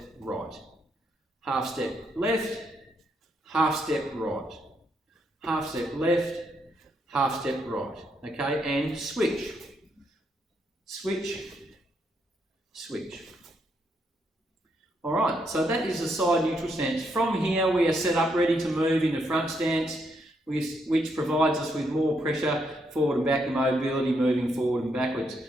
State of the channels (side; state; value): both; normal; correlation 0.77